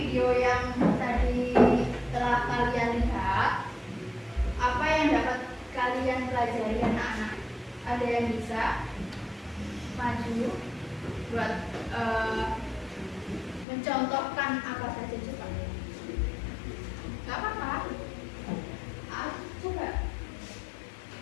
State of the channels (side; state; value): right; drops out; at 13.7 s